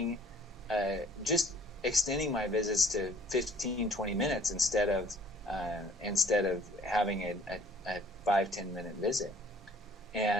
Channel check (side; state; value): both; normal; correlation 0.56